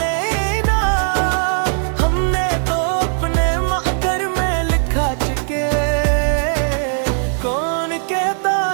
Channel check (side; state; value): left; silent; digital silence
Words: हमने तो अपने महकर में लिखा चुके। कौन कहता